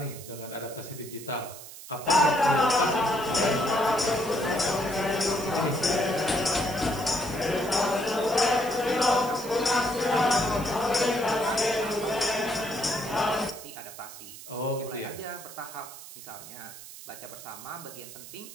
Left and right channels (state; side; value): noise; right; hiss, 14 dB below the sound